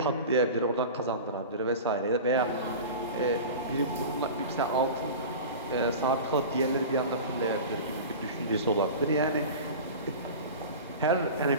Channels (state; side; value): inverted; both; correlation -0.32